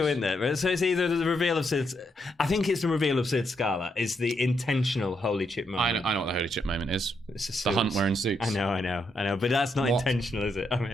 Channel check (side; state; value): both; normal; correlation 0.79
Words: in there. So it's either the reveal of Sid. I think it's the reveal of Sid Scala. Is the intentional holy chip moment. I know what the holy chip moment is. It's the Hunt wearing suits. I know. But that's not intentional, is it? I